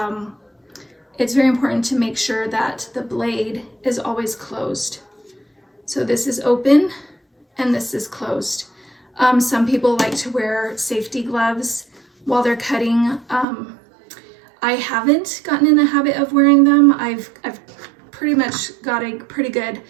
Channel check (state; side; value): drops out; left; at 13.5 s